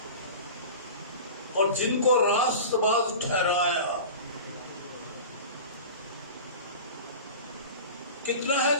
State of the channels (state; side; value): inverted; both; correlation -0.34